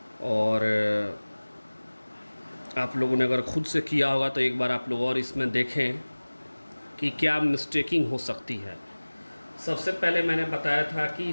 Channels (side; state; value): both; inverted; correlation -1.00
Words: और आप लोगों ने अगर खुद से किया होगा तो एक बार आप लोग और इसमें देखें कि क्या मिस्टेकिंग हो सकती है। सबसे पहले मैंने बताया था कि